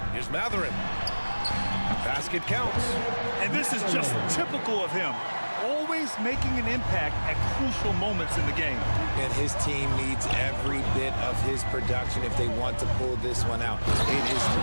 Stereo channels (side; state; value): both; inverted; correlation -1.00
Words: Here's Mathurin. Basket counts. And this is just typical of him. Always making an impact at crucial moments in the game. And his team needs every bit of his production if they want to pull this one out. It is